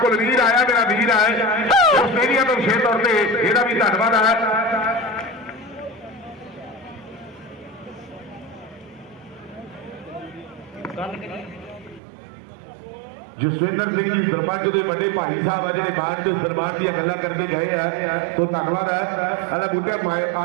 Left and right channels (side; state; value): left; drops out; at 12.0 s